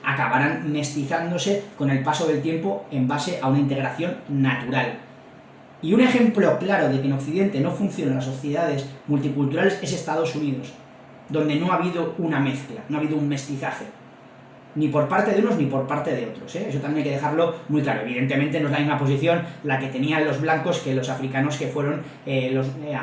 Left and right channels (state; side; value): identical; both; correlation 1.00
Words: acabarán mestizándose con el paso del tiempo en base a una integración natural. Y un ejemplo claro de que en Occidente no funcionan las sociedades multiculturales es Estados Unidos, donde no ha habido una mezcla, no ha habido un mestizaje, ni por parte de unos ni por parte de otros, Eso también hay que dejarlo muy claro. Evidentemente no es la misma posición la que tenían los blancos que los africanos, que fueron